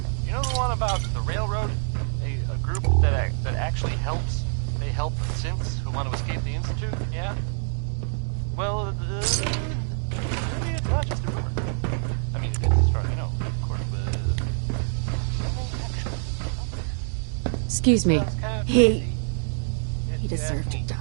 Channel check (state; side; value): silent; left; digital silence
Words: You know the one about the railroad? A group that actually helps? They help synths who want to escape the Institute? Yeah? Well, it's not just a rumor. I mean, it is as far as I know, of course, but... Excuse me. He deserved to die.